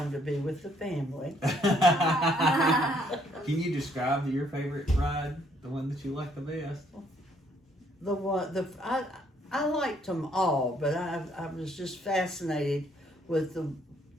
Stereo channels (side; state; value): both; normal; correlation 0.67